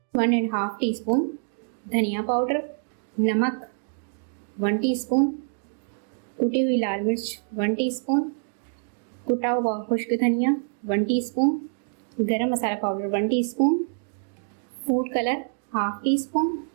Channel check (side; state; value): left; silent; digital silence